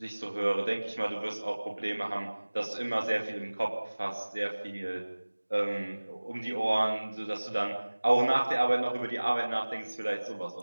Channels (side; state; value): both; inverted; correlation -1.00